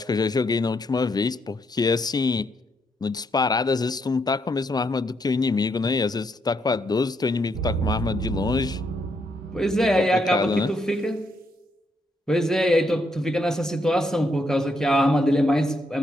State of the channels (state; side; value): normal; both; correlation 0.76